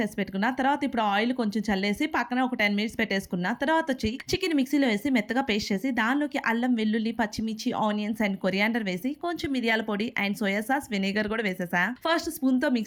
పెట్టుకున్నా. తర్వాత ఇప్పుడు ఆయిల్ కొంచెం చల్లేసి పక్కన ఒక 10 మినిట్స్ పెట్టేసుకున్నా. తర్వాత వచ్చి చికెన్ మిక్సీలో వేసి మెత్తగా పేస్ట్ చేసి దానిలోకి అల్లం వెల్లుల్లి పచ్చిమిర్చి ఆనియన్స్ అండ్ కొరియాండర్ వేసి కొంచెం మిరియాల పొడి అండ్ సోయా సాస్ వెనిగర్ కూడా వేసేసా. ఫస్ట్ స్పూన్ తో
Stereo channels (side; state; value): both; identical; correlation 1.00